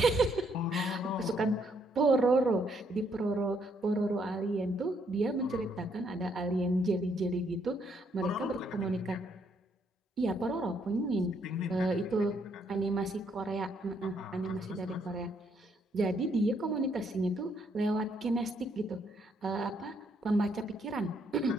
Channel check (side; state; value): both; normal; correlation 0.72